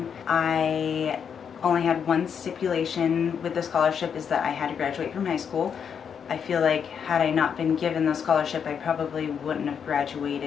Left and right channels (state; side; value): quieter; right; 7.3 dB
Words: I only had one stipulation with the scholarship, is that I had to graduate from high school. I feel like had I not been given the scholarship, I probably wouldn't have